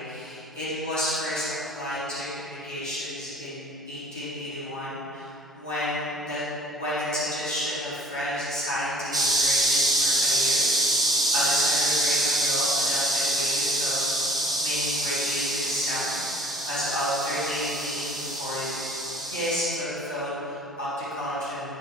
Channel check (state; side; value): normal; both; correlation 0.51